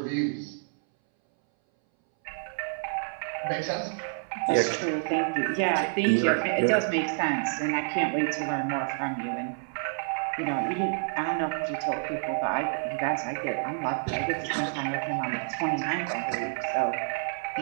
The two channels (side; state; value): left; silent; 59 dB below the other